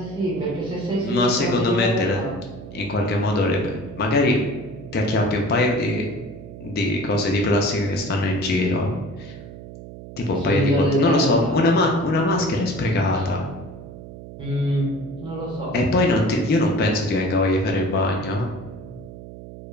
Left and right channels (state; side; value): noise; right; hum, 14 dB below the sound